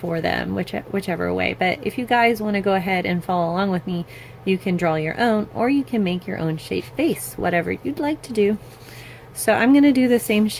them, whichever way. But if you guys want to go ahead and follow along with me, you can draw your own, or you can make your own shaped vase, whatever you'd like to do. So I'm going to do the same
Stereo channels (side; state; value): both; identical; correlation 1.00